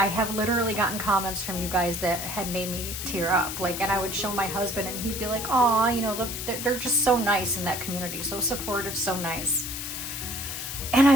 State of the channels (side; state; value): left; noise; hiss, 6 dB below the sound